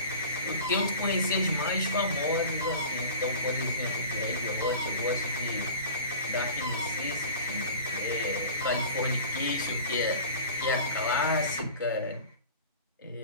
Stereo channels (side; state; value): both; inverted; correlation -0.38